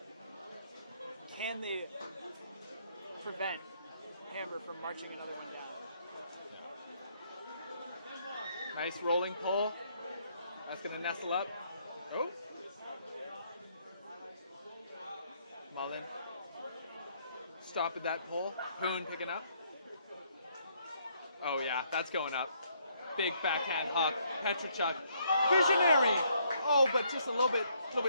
Can they prevent Hamber from marching another one down? Nice rolling pull. That's going to nestle up. Oh. Mullen. Stop at that pull. Poon picking up. Oh, yeah, that's going up. Big backhand hook. Petrichuk. Visionary. Oh, but just a little bit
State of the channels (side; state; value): both; inverted; correlation -0.70